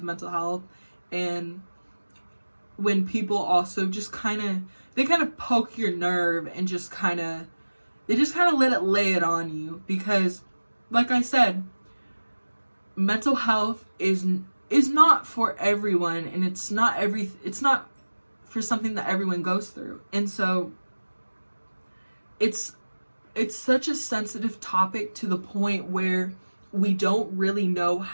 mental health. And when people also just they kind of poke your nerve and just kind of lay it on you, because like I said, mental health is not for everyone, and it's not for something that everyone goes through. And so it's such a sensitive topic, to the point where we don't really know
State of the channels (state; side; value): inverted; both; correlation -1.00